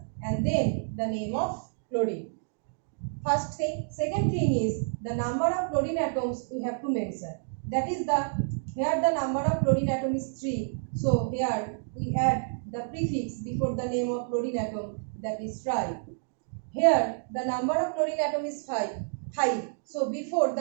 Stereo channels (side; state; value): left; silent; digital silence